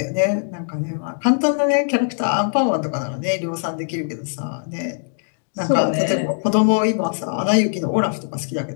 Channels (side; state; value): right; silent; digital silence